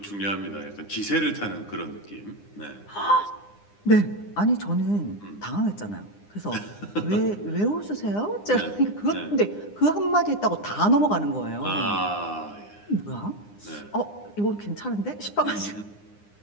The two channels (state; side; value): late; right; 9.8 ms